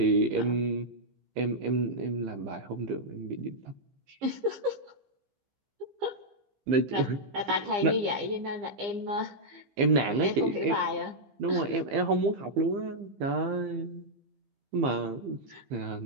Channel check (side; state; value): left; late; 15 ms